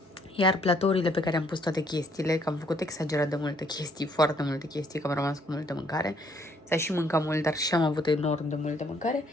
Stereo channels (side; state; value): both; normal; correlation 0.66